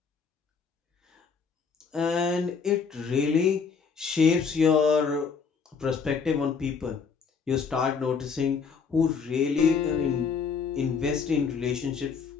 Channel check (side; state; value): right; quieter; 5.8 dB